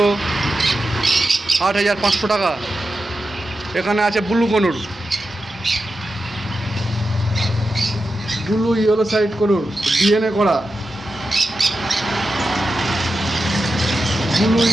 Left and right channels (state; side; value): normal; both; correlation 0.90